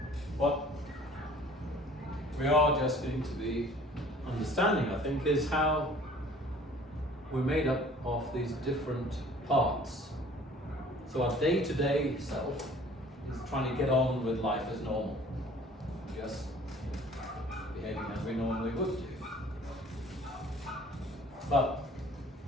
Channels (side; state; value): both; normal; correlation 0.51